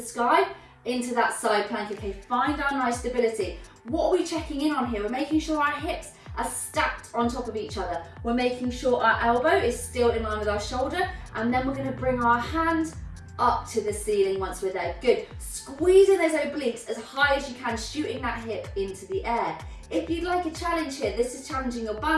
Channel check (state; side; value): identical; both; correlation 1.00